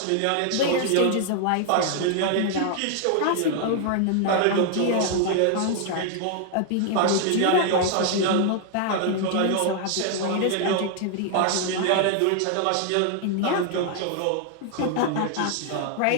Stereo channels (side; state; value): both; different; correlation 0.00